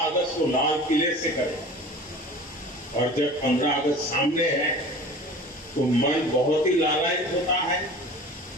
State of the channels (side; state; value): both; normal; correlation 0.40